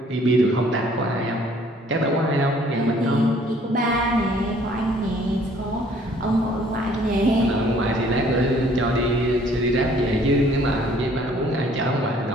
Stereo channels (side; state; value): both; normal; correlation 0.59